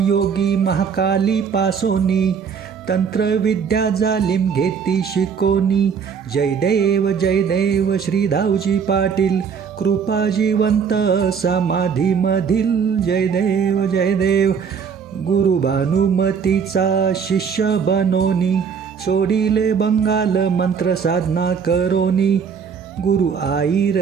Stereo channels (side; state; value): left; quieter; 6.6 dB